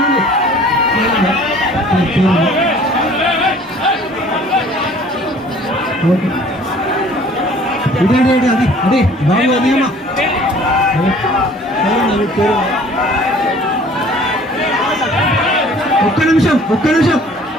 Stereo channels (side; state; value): both; normal; correlation 0.52